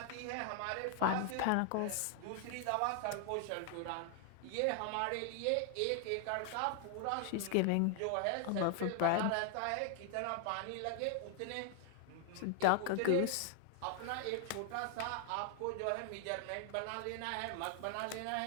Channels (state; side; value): different; both; correlation 0.00